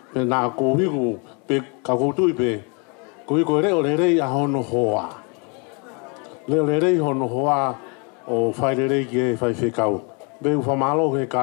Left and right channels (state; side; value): quieter; right; 33.8 dB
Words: Pe na ko hi ko pe ka ko tu pe. Ko ko re o re a hono hoa. Le re hono hoa o fa re ke fa fe kau. Be fa malo ke